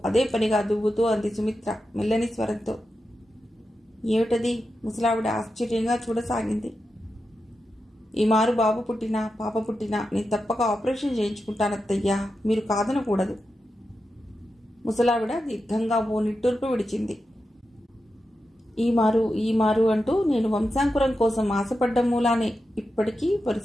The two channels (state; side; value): normal; both; correlation 0.89